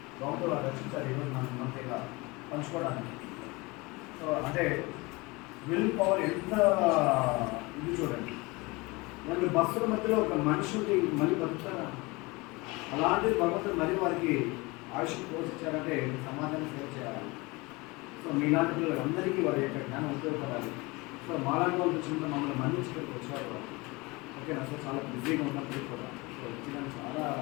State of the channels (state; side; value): quieter; right; 24.5 dB